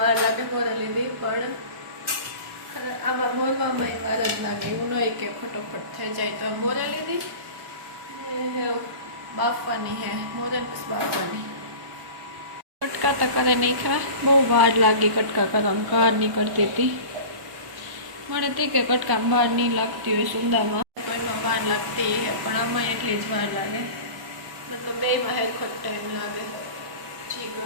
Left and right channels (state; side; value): late; left; 1.1 ms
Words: લાગે મોરે લીધી પણ આમાં મોરવામાં વાર જ લાગે. એવું નહીં કે ફટોફટ થઈ જાય. તો મોરે લીધી બાફવાની હે, મોરે પછી બાફવાની. કટકા તો કરે નહીં ખા, બહુ વાર લાગી કટકા કરવામાં, કાર નીકળતી હતી. મને તે કે કટકામાં વાર નહીં લાગતી હોય સુંદામાં તો એમાં વાર લાગતી હે પણ આમાં એટલી જ વાર લાગે. મતલબ બેમાં હેરખો ટાઈમ લાગે જી